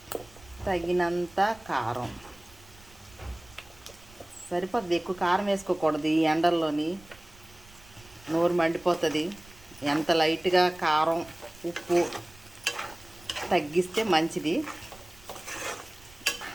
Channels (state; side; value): noise; right; rumble, 24 dB below the sound